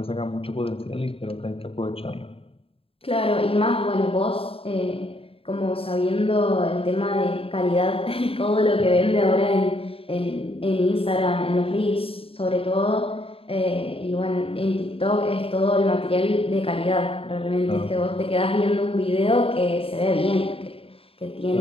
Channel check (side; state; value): right; late; 0.27 ms